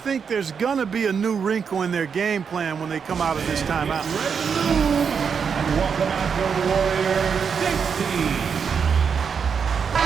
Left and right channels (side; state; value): left; quieter; 6.4 dB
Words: there's going to be a new wrinkle in their game plan when they come out of this timeout. Welcome out to the Warriors 16.